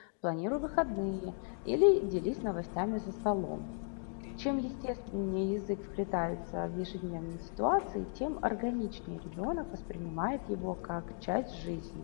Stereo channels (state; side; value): silent; right; 54 dB below the other